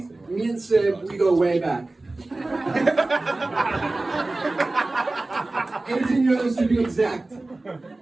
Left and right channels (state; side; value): quieter; left; 3.0 dB